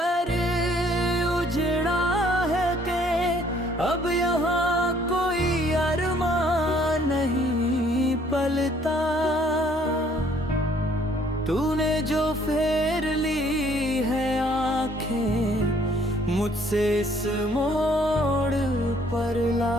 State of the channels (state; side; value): normal; both; correlation 0.62